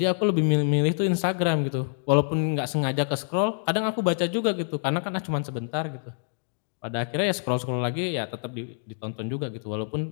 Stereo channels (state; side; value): silent; right; 61 dB below the other